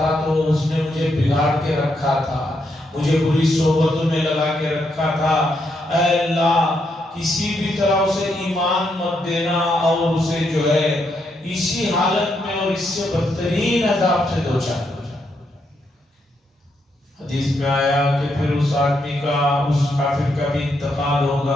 تو اس نے مجھے بگاڑ کے رکھا تھا، مجھے بری صحبتوں میں لگا کے رکھا تھا، اے اللہ کسی بھی طرح اسے ایمان مت دینا اور اسے جو ہے اسی حالت میں اور اس سے بدترین عذاب سے دوچار کر۔ حدیث میں آیا کہ پھر اس آدمی کا، اس کافر کا بھی انتقال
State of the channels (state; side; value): normal; both; correlation 0.79